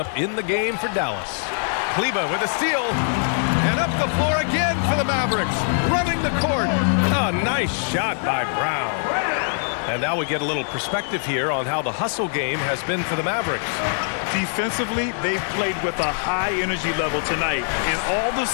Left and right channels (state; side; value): silent; right; 64 dB below the other